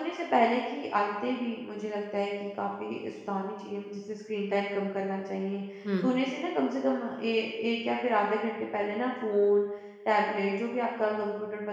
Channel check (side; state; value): both; identical; correlation 1.00